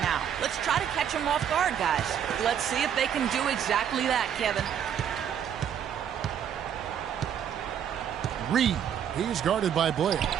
now. Let's try to catch them off guard, guys. Let's see if they can do exactly that, Kevin. Reed. He's guarded by Blair.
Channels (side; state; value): left; quieter; 8.9 dB